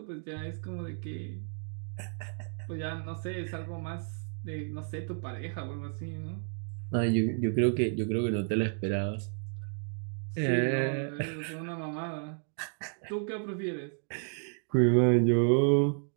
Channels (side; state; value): left; silent; 56 dB below the other